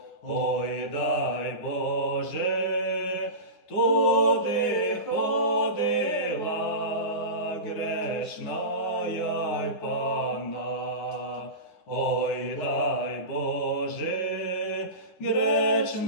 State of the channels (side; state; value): right; late; 9.8 ms